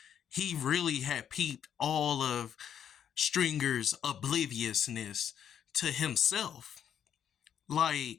He really had peeped all of Stringer's obliviousness to himself.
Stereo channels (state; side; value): quieter; right; 9.0 dB